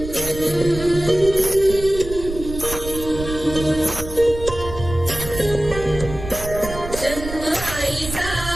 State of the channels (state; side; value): noise; right; rumble, 9 dB below the sound